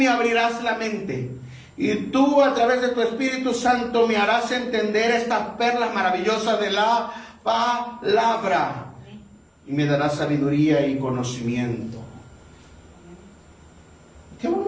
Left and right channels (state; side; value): identical; both; correlation 1.00